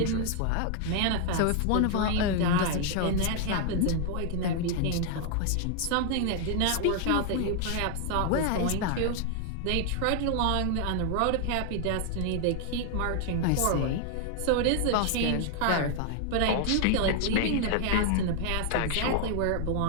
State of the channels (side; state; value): both; different; correlation 0.00